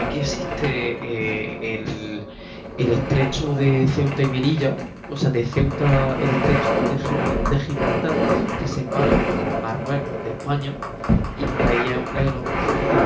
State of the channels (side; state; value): both; identical; correlation 1.00